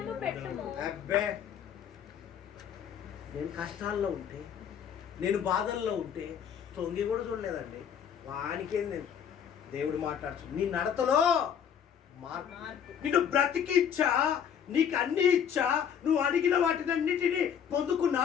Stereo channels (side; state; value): right; quieter; 8.3 dB